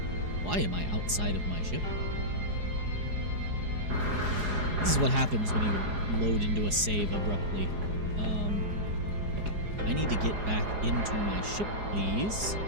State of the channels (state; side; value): late; left; 4.8 ms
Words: Why am I outside of my ship? This is what happens when you load into a save abruptly. I need to get back into my ship, please.